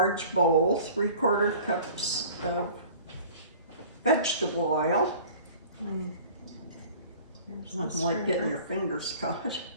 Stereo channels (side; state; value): both; inverted; correlation -0.46